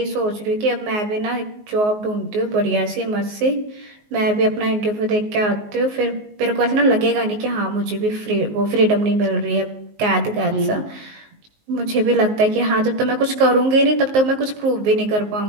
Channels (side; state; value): left; late; 19 ms